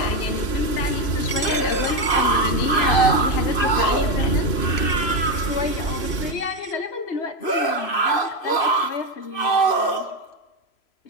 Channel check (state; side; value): late; right; 3.0 ms